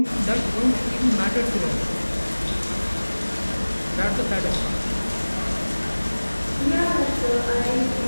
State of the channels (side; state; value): both; inverted; correlation -1.00